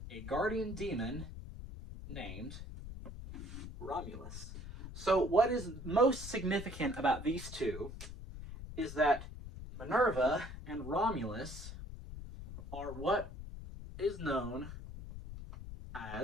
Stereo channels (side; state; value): left; noise; rumble, 10 dB below the sound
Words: a guardian demon named Romulus. So what is most significant about these two is that Minerva and Romulus are what is known